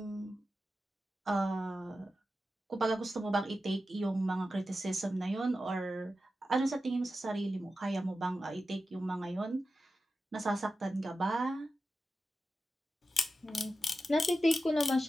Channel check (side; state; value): both; normal; correlation 0.92